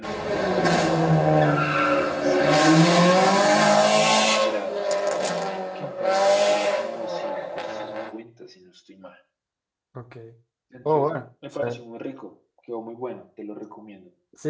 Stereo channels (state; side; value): identical; both; correlation 1.00